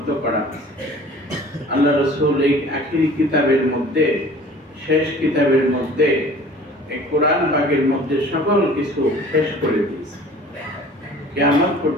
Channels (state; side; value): normal; both; correlation 0.47